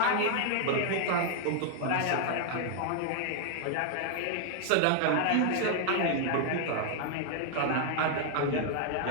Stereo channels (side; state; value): both; different; correlation 0.00